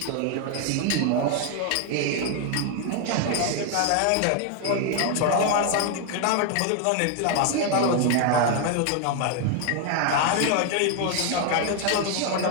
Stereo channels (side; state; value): both; different; correlation 0.01